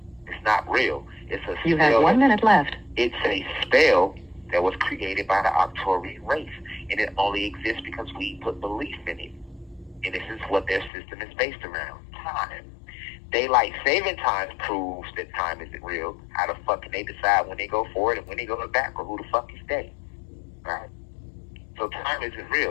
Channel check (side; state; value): right; drops out; at 10.9 s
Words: It's not real. It's a spell. You have 1 minute left. It's a spell that was created by the Arcturian race. And it only exists because we put belief in it. And this is what their system is based around. Time. Daylight saving time proves that time isn't real. How the fuck can they decide when they go forward and when they go back, or who the fuck is they? Right? So time isn't